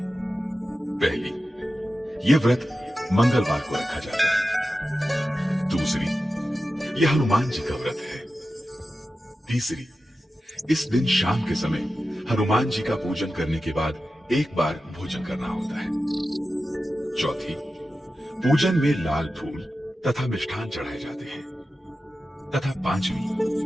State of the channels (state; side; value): normal; both; correlation 0.93